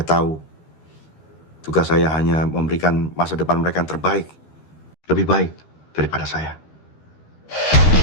tahu, tugas saya hanya memberikan masa depan mereka yang terbaik. Lebih baik daripada saya.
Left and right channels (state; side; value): late; right; 13 ms